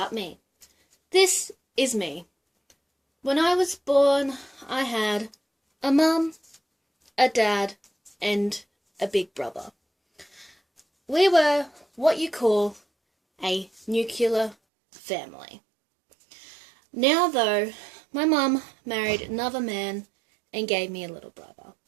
me. This is me. When I was born, I had a mum, a dad, and a big brother. We were what you call a nuclear family. Now, though, my mum married another man and gave me a little brother,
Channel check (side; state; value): left; drops out; at 14.6 s